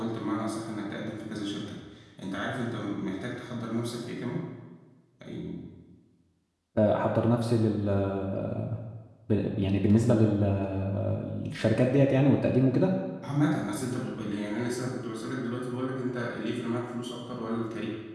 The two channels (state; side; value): identical; both; correlation 1.00